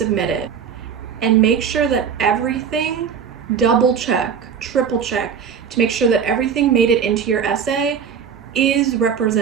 it. And make sure that everything, double check, triple check, to make sure that everything made it into your essay is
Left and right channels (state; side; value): quieter; left; 7.1 dB